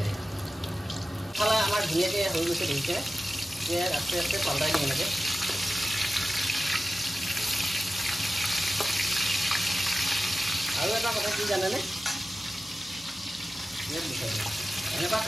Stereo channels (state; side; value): normal; both; correlation 0.94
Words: খালে আমাৰ ধুনীয়াকৈ হৈ গৈছে দেখিছে আস্তে আস্তে পাল্টাই দিম এনেকৈ আৰু এটা কথা কি জানেনে এনেকুৱা